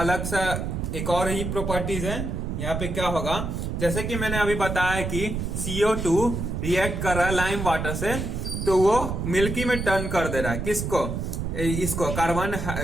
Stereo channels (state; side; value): noise; right; rumble, 3 dB below the sound